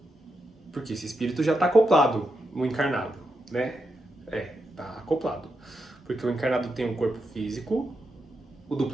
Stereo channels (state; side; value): normal; both; correlation 0.84